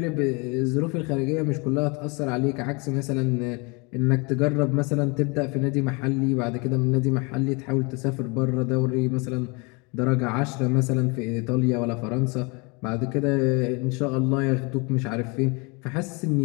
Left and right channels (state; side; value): quieter; right; 29.9 dB